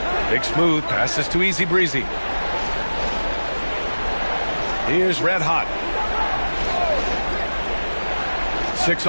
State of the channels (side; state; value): both; inverted; correlation -1.00